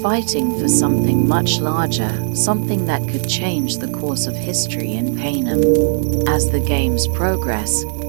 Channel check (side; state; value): left; silent; 61 dB below the other